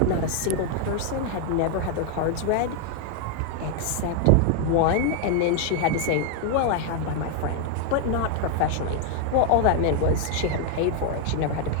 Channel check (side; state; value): both; different; correlation 0.01